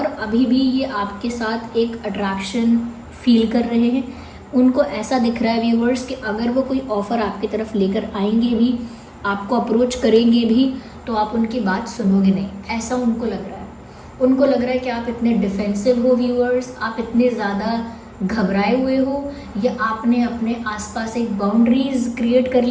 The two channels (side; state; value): both; identical; correlation 1.00